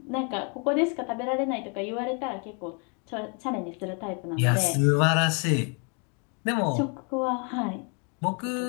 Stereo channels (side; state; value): right; quieter; 36.7 dB